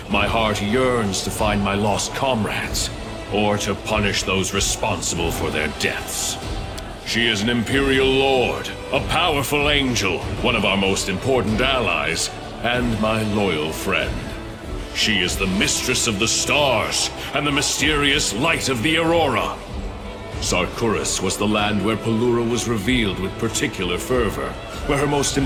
My heart yearns to find my lost comrades, or to punish those responsible for their deaths. She is an Imperial Lord, a powerful angel, one of our most important allies, and my loyal friend. She is the mistress of the stars, and the mysterious light of the Aurora. Sarkoris was the land where Pelura was revealed with particular fervor, where her most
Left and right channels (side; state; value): both; identical; correlation 1.00